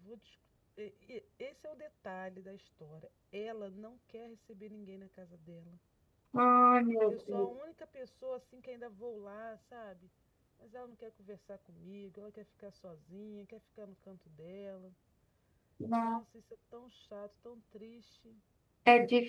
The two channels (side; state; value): both; identical; correlation 1.00